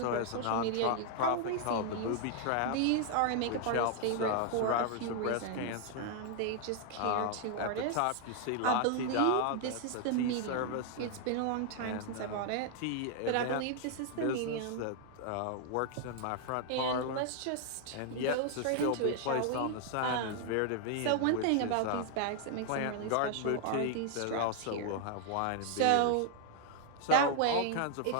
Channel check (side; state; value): both; different; correlation 0.00